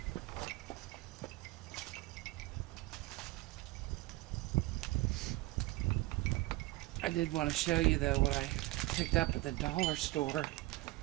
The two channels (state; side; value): quieter; left; 19.3 dB